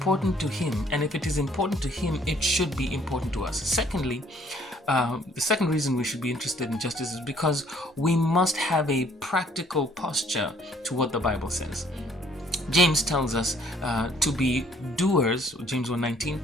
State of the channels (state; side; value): normal; both; correlation 0.61